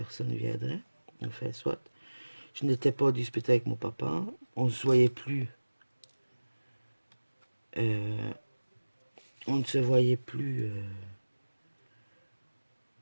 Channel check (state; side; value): inverted; both; correlation -1.00